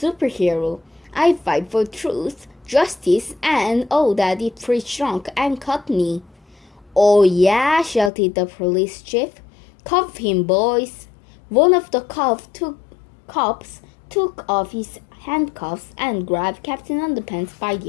I fight for truth, justice, and all that it free shrunk and cut me. Oh yeah, shouted the police chief. Cuff him, boys. One of the cops took off his handcuffs and grabbed Captain Underpants by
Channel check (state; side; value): drops out; right; at 8.1 s